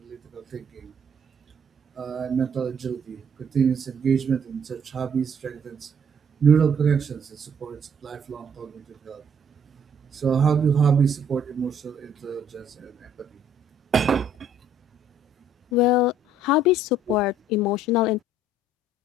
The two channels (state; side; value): normal; both; correlation 0.62